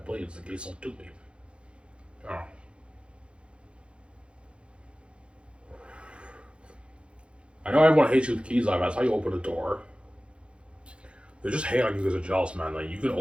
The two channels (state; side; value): late; left; 0.058 ms